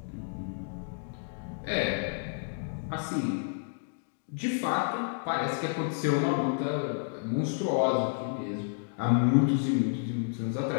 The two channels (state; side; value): silent; right; digital silence